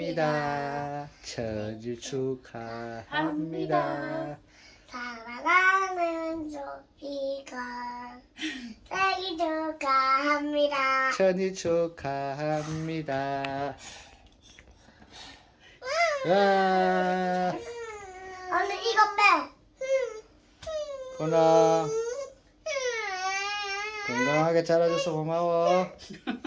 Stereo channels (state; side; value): identical; both; correlation 1.00